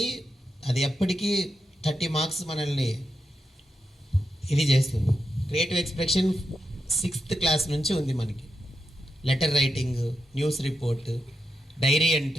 అది ఎప్పటికీ 30 మార్క్స్ మనల్ని ఇది చేస్తుంది. క్రియేటివ్ ఎక్స్ప్రెషన్ 6th క్లాస్ నుంచి ఉంది మనకి. Letter writing, news report, diary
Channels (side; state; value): both; normal; correlation 0.87